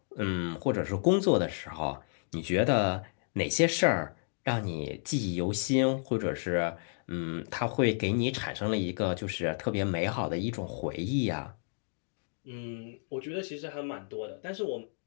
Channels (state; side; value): silent; right; digital silence